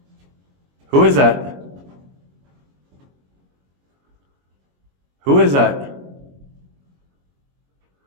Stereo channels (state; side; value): late; left; 22 ms